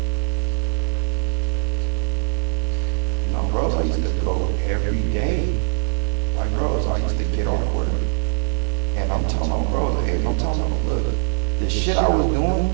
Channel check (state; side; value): silent; left; digital silence